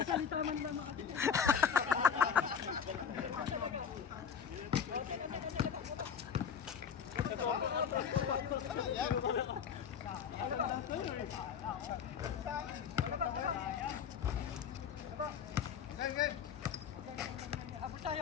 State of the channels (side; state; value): right; quieter; 7.4 dB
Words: man lang. Abot